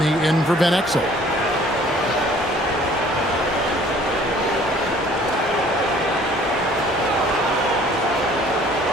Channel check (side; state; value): both; normal; correlation 0.54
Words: in for Ben Exel.